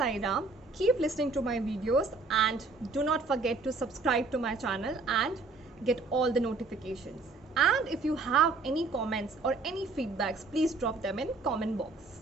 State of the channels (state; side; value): quieter; left; 3.8 dB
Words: Ram. Keep listening to my videos and do not forget to subscribe to my channel and get all the notifications. And if you have any comments or any feedbacks, please drop them in comment